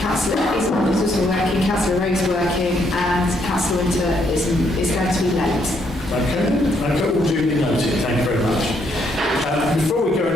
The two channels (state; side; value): normal; both; correlation 0.73